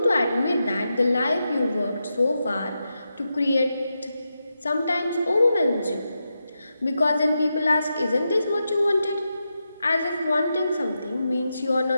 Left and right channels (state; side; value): inverted; both; correlation -0.88